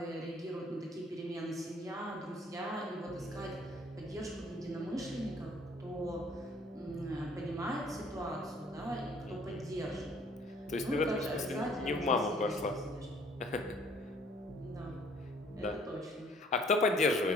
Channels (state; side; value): normal; both; correlation 0.59